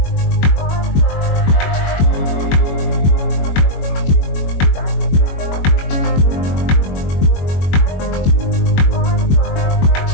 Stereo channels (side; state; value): right; late; 21 ms